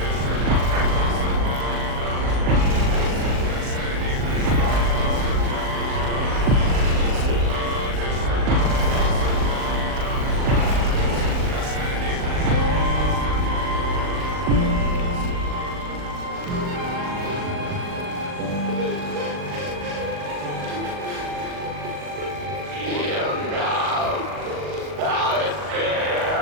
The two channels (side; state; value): left; late; 39 ms